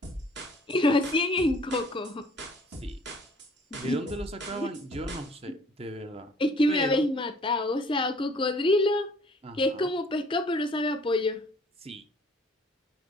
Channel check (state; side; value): normal; both; correlation 0.56